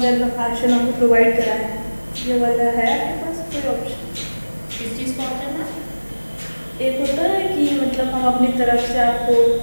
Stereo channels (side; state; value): both; inverted; correlation -1.00